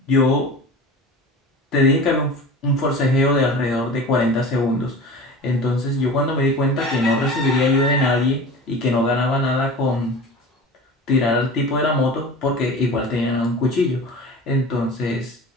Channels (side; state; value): both; normal; correlation 0.35